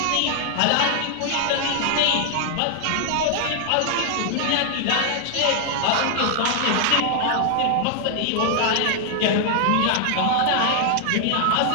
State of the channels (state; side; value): different; both; correlation 0.00